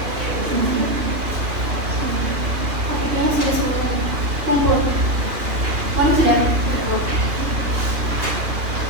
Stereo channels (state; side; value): late; left; 2.8 ms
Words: Kumpul. Mana sudah?